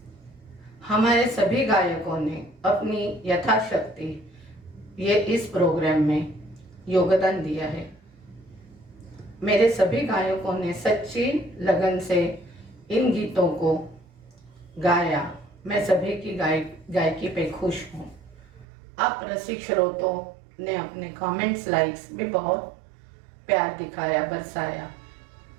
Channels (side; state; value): left; drops out; at 18.7 s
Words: हमारे सभी गायकों ने अपनी यथाशक्ति ये इस प्रोग्राम में योगदान दिया है। मेरे सभी गायकों ने सच्ची लगन से इन गीतों को गाया। मैं सभी की गायकी पे खुश हूँ। आप रसिक श्रोतों ने अपने कमेंट्स, लाइक्स भी बहुत प्यार दिखाया, बरसाया।